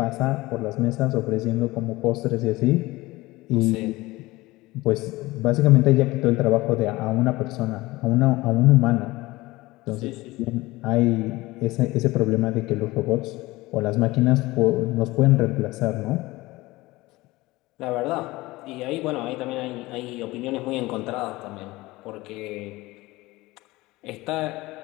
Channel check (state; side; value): quieter; right; 20.0 dB